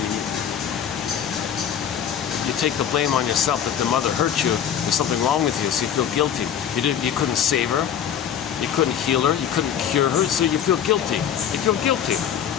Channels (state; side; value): quieter; right; 8.9 dB